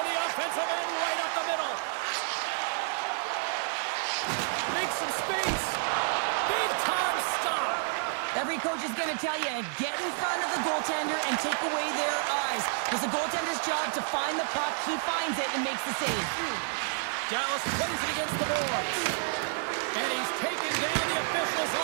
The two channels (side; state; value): left; silent; 58 dB below the other